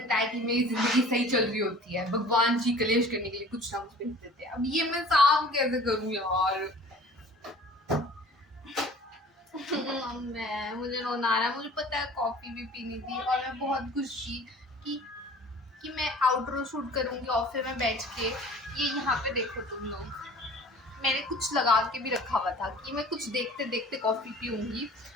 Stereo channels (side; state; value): both; normal; correlation 0.46